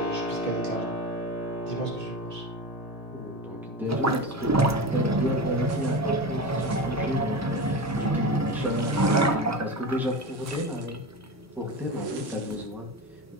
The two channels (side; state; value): both; normal; correlation 0.25